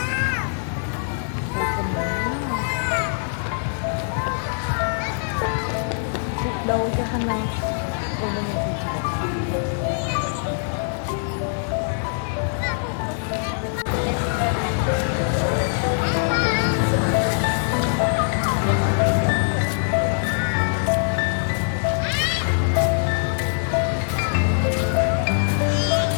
đâu cho khăn nào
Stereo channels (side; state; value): right; silent; digital silence